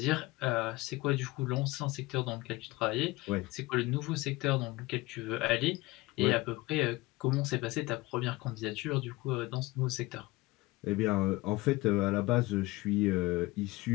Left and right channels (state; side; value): quieter; right; 21.0 dB